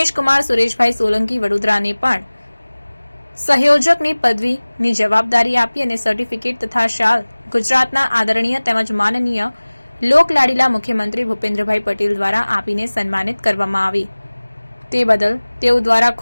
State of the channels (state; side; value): inverted; both; correlation -1.00